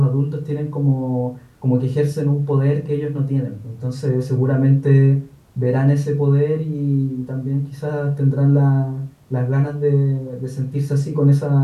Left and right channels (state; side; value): identical; both; correlation 1.00